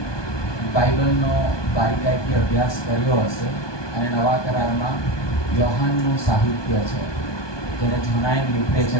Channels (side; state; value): right; late; 1.2 ms